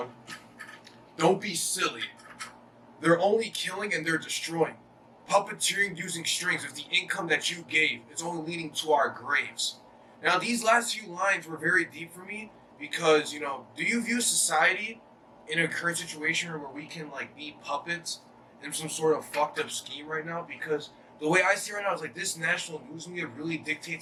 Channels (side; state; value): both; identical; correlation 1.00